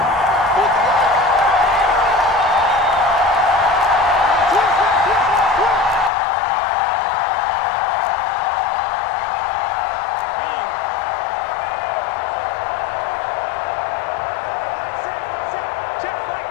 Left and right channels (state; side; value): drops out; right; at 6.1 s